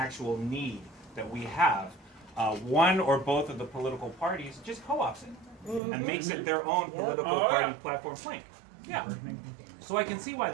need that we have, one or both of the political parties just co-ops it. And makes it their own political party platform plank. Yeah. So I can see why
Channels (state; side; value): drops out; left; at 5.8 s